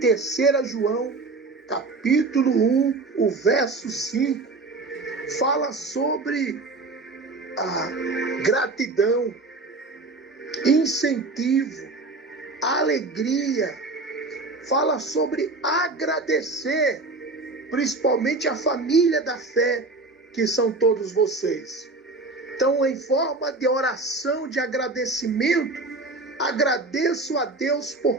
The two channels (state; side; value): quieter; left; 3.4 dB